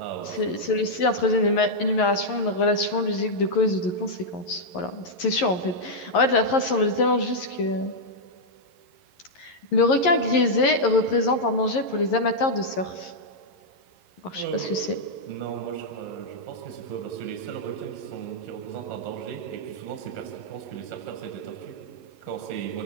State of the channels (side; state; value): right; late; 11 ms